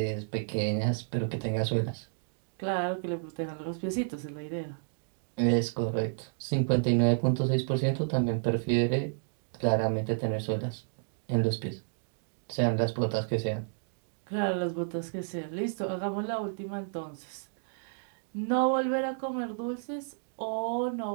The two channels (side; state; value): left; silent; digital silence